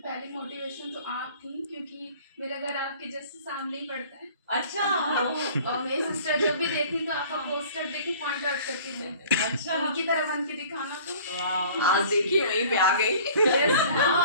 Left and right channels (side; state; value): both; inverted; correlation -0.48